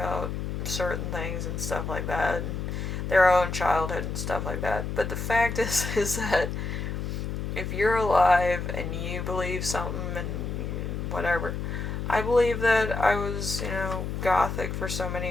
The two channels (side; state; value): left; noise; hum, 4 dB below the sound